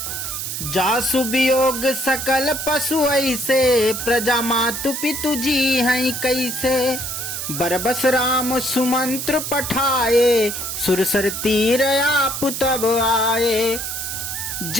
जासु वियोग सकल पशु ऐसे, प्रजा मातु पितु जी हैं कैसे। बरबस राम सुमंत्र पठाए, सुरसर तीर आप तब आए।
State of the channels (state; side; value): noise; right; hiss, 4 dB below the sound